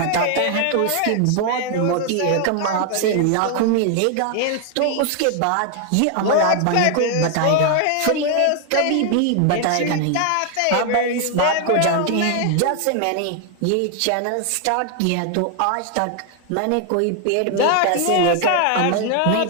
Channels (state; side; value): different; both; correlation 0.00